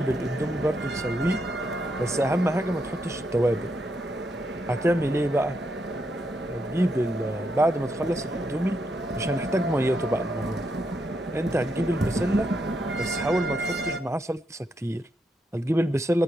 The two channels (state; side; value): normal; both; correlation 0.80